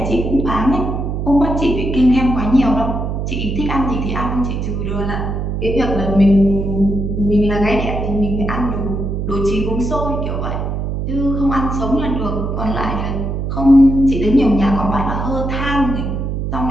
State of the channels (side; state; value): right; noise; hum, 2 dB below the sound